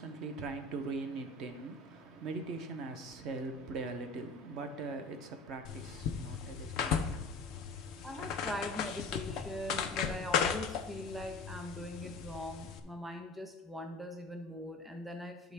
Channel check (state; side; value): quieter; right; 3.2 dB